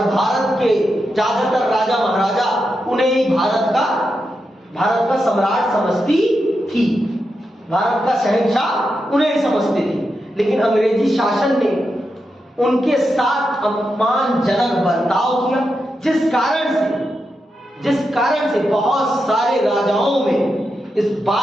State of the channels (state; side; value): normal; both; correlation 0.87